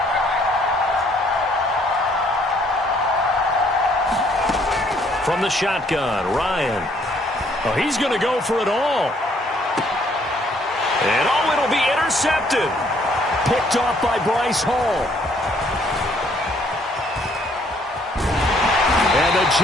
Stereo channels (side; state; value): both; normal; correlation 0.65